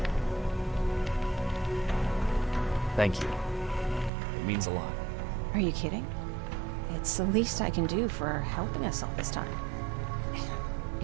Thank you. It means a lot. Are you kidding? It's the least I can do for helping us all this time.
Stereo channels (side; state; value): left; drops out; at 4.1 s